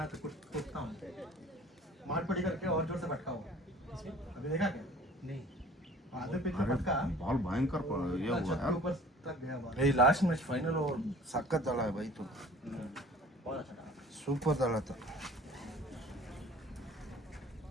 तो कुटता हूं मार पड़ी करके और जोर से भटका हुआ अभी देखा क्या नहीं आधे पिच में अरे भटका बॉल भयंकर ये हुआ छत के यार ऊपर तक गया बॉल ಈ ಲಾಸ್ಟ್ ಮ್ಯಾಚ್ ಫೈನಲ್ ಓವರ್ ಸಖತ್ ದಳ ಬೈತು बहुत अच्छा था ಸೂಪರ್ ದಳ था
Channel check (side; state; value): both; normal; correlation 0.48